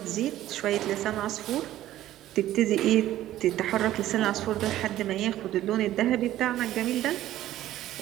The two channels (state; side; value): quieter; left; 13.8 dB